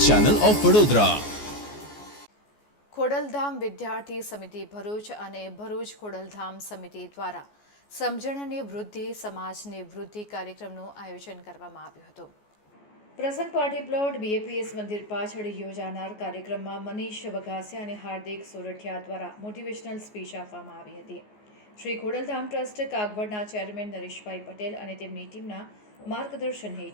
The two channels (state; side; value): late; right; 14 ms